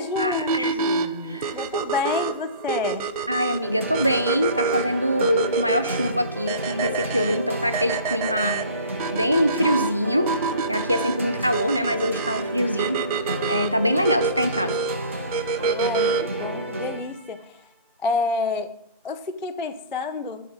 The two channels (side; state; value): both; inverted; correlation -0.46